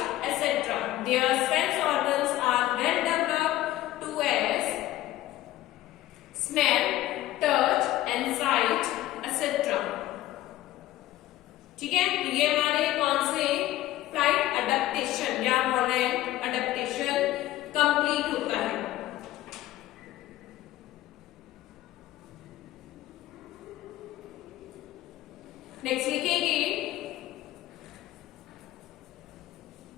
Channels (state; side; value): quieter; right; 15.0 dB